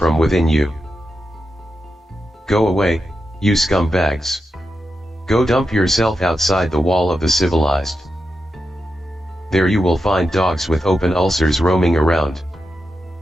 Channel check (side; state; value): both; normal; correlation 0.88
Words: within you. Go away, you scumbags. Go dump yourself outside the wall of the civilized. There you will find dogs with open ulcers roaming around.